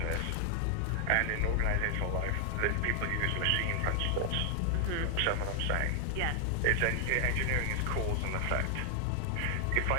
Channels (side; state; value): both; different; correlation 0.00